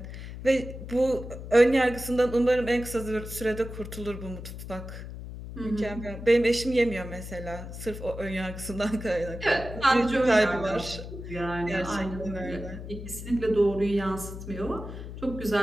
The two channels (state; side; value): noise; left; hum, 10 dB below the sound